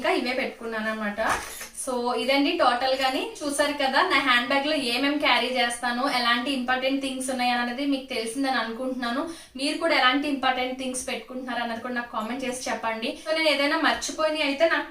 ఇవే పెట్టుకున్నాను అనమాట. సో ఇదండి టోటల్ గాని. చూసారు కదా నా హ్యాండ్ బ్యాగ్ లో ఏమేమి క్యారీ చేస్తాను, ఎలాంటి ఇంపార్టెంట్ థింగ్స్ ఉన్నాయి అనేది మీకు తెలిసిందని అనుకుంటున్నాను. మీరు కూడా ఎలాంటి ఇంపార్టెంట్ థింగ్స్ పెట్టుకుంటున్నారు అన్నది కూడా నాకు కామెంట్ చేసి చెప్పండి. సో నేను ఏదైనా మర్చిపోయి అయితే నాకు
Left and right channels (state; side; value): identical; both; correlation 1.00